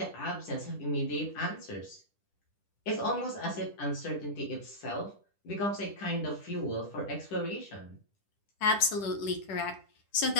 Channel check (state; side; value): late; right; 10 ms